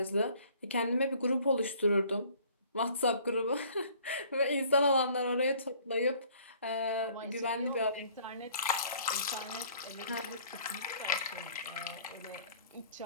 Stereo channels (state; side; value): inverted; both; correlation -0.56